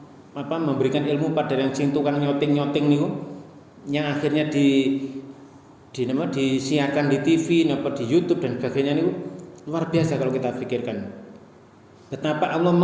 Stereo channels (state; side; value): identical; both; correlation 1.00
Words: memberikan ilmu pada yang sing tukang nyoting niku, yang akhirnya disiarkan di TV, di YouTube dan sebagainya niku luar biasa kalau kita pikirkan. Betapa Allah